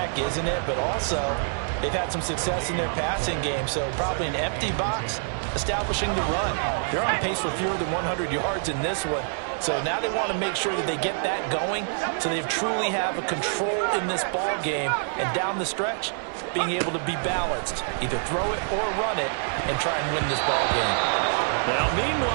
isn't it? But also, they've had some success in their passing game, so probably an empty box establishing the run. They're on pace for fewer than 100 yards in this one. So now they want to make sure that they get that going so they truly have a control in this ball game. And down the stretch, being able to be balanced. Either throw it or run it and try and win this ball game. Now,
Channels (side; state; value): left; silent; 61 dB below the other